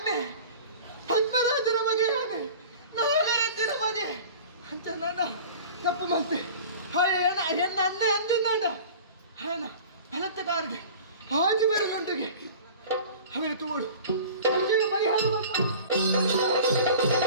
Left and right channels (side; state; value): both; inverted; correlation -0.40